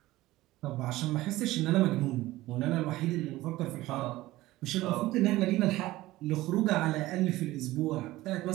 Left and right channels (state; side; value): quieter; left; 17.4 dB